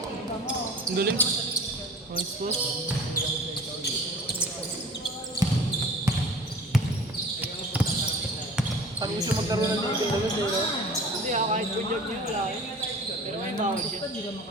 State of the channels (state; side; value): normal; both; correlation 0.42